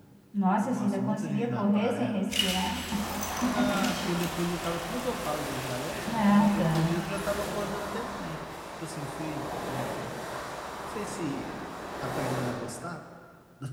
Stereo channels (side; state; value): both; identical; correlation 1.00